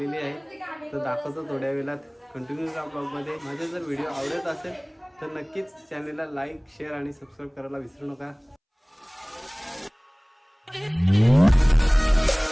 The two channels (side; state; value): both; identical; correlation 1.00